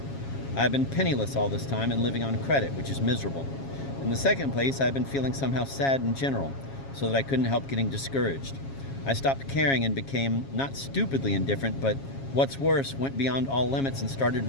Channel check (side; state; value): right; late; 7.3 ms